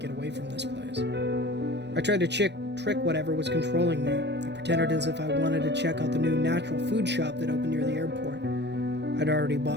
away from this place. I tried to trick whatever was controlling me. I pretended as if I wanted to check out the new natural food shop that opened near the airport. I'd already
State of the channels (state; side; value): late; left; 0.50 ms